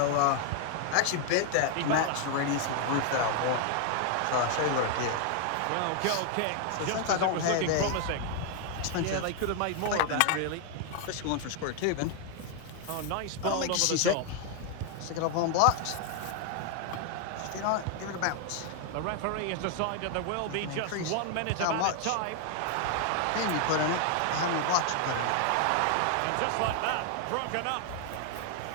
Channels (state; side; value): different; both; correlation 0.00